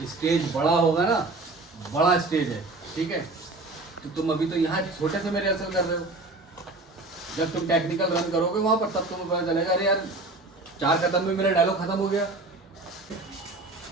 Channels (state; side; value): quieter; left; 3.1 dB